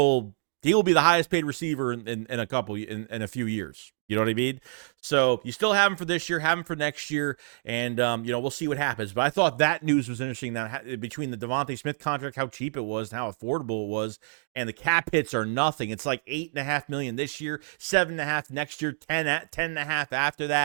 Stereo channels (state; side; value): silent; left; digital silence